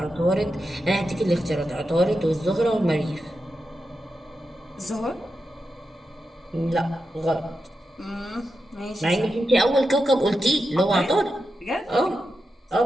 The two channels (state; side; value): normal; both; correlation 0.89